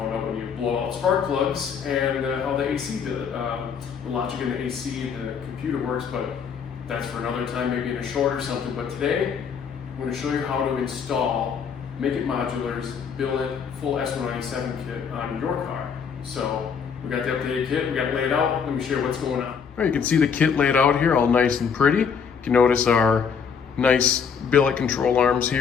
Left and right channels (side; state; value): right; quieter; 6.6 dB